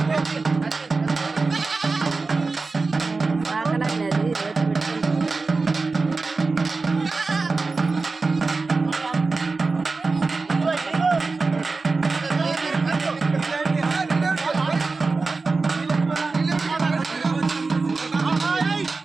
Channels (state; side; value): quieter; left; 4.0 dB